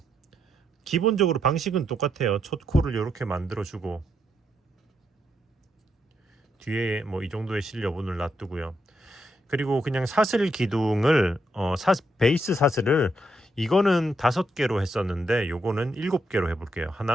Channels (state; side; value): normal; both; correlation 0.79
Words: 기본적으로 방식은 똑같아요. 첫 코를 이렇게 만들어 주고 뒤에 뭐 이 정도의 실 여분을 놔두고요. 그리고 그냥 사슬 기둥을 베이스 사슬을, 이거는 5개로 했었는데 요거는 7개로 해볼게요.